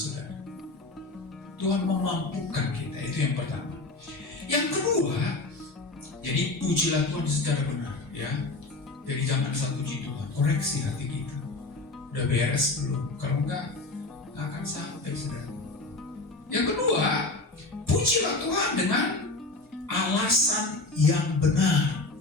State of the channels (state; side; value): quieter; right; 3.1 dB